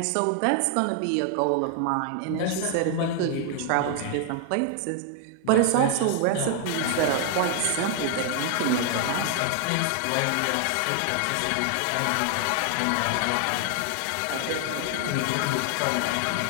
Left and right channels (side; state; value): both; different; correlation 0.00